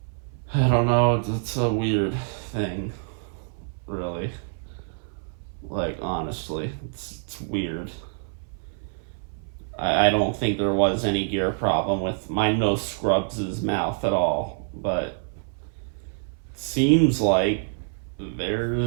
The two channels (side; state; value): left; silent; 61 dB below the other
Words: I don't know. It's a weird thing, really. Like honestly, it's weird. I don't think there was any gear problem with my No Scrubs' mouth at all, but seems like